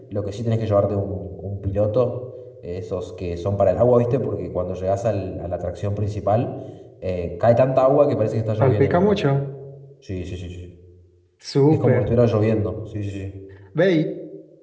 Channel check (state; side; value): identical; both; correlation 1.00